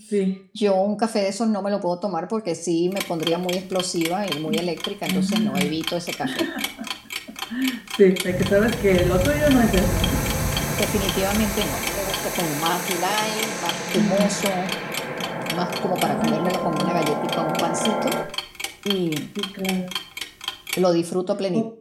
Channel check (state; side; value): identical; both; correlation 1.00